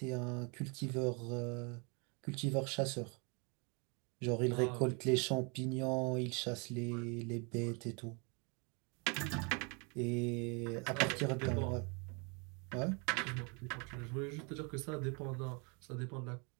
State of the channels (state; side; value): quieter; left; 33.2 dB